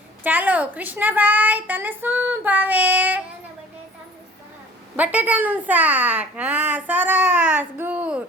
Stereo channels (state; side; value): normal; both; correlation 0.48